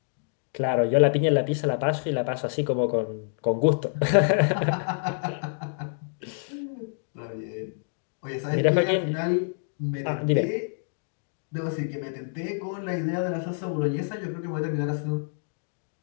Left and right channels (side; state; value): right; silent; digital silence